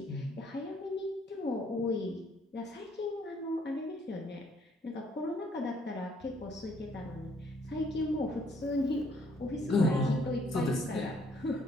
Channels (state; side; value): normal; both; correlation 0.66